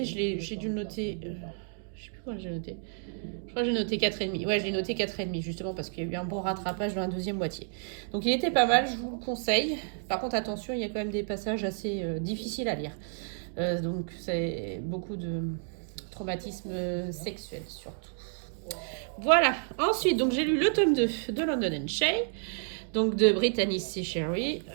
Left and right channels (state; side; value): silent; left; 57 dB below the other